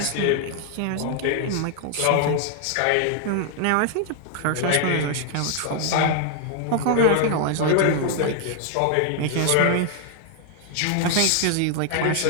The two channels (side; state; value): both; different; correlation 0.00